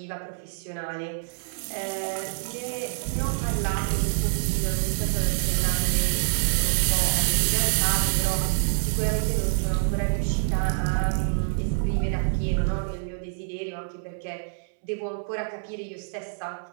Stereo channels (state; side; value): silent; left; digital silence